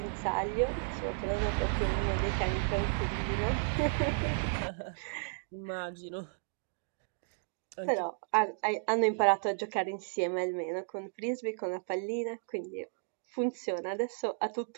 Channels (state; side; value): silent; left; digital silence